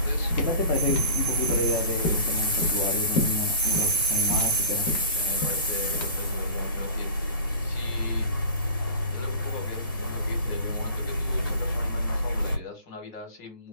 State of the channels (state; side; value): inverted; both; correlation -0.40